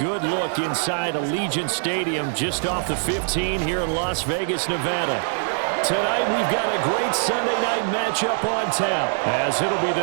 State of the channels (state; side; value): silent; left; digital silence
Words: look inside Allegiant Stadium just off the 15 here in Las Vegas, Nevada. Tonight we've got a great Sunday night matchup on tap, as it'll be